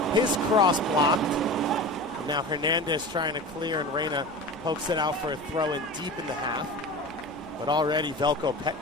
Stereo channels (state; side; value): noise; left; rumble, 25 dB below the sound